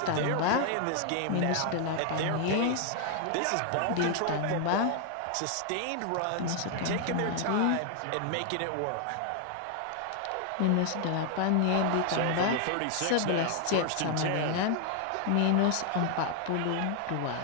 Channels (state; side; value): different; both; correlation 0.00